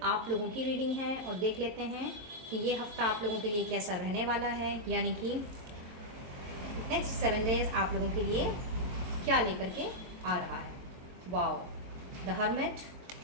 आप लोगों की रीडिंग है। और देख लेते हैं कि ये हफ्ता आप लोगों के लिए कैसा रहने वाला है, यानी कि नेक्स्ट 7 डेज आप लोगों के लिए क्या लेकर के आ रहा है। वाओ, द हर्मिट,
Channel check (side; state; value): left; late; 22 ms